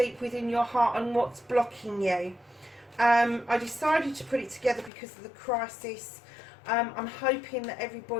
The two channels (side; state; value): right; drops out; at 4.9 s